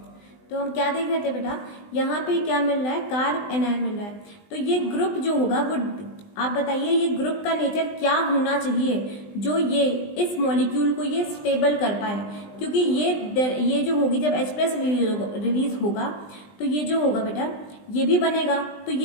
तो हम क्या देख रहे थे बेटा, यहाँ पे क्या मिल रहा है, कार्ब एनायन मिल रहा है। तो ये ग्रुप जो होगा वो, आप बताइए ये ग्रुप का नेचर क्या होना चाहिए जो ये इस मॉलिक्यूल को ये स्टेबल कर पाए, क्योंकि ये जो होगी जब H+ रिलीज होगा तो ये जो होगा बेटा ये भी बनेगा, तो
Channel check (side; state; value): right; late; 20 ms